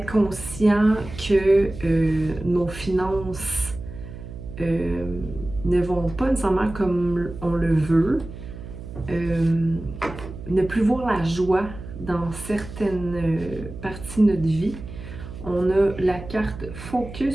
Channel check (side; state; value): right; noise; hum, 12 dB below the sound